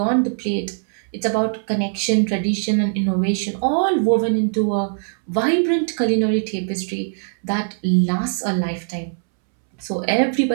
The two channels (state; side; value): silent; left; 65 dB below the other